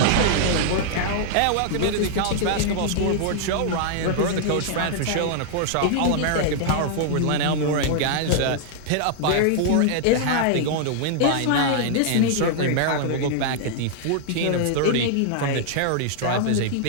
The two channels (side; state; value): both; different; correlation -0.01